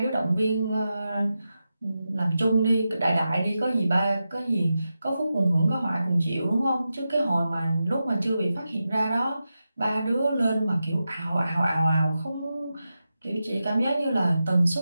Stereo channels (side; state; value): both; inverted; correlation -0.91